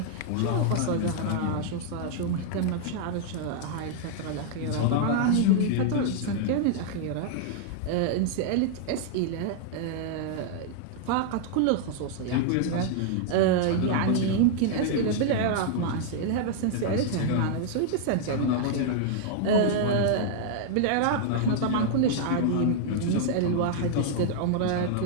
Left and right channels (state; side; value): different; both; correlation -0.01